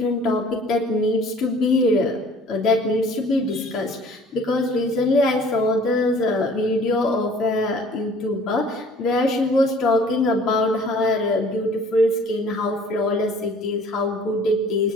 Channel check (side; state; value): both; normal; correlation 0.52